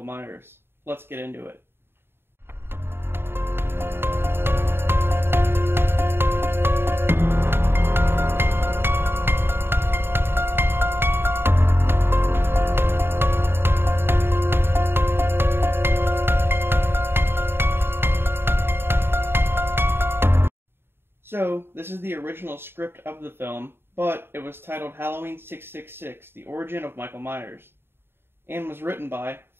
Myers. Let's get into it. So, this is the original script of the film, but it was titled Halloween 666, The Origin of Michael Myers, and was written by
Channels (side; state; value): left; late; 0.11 ms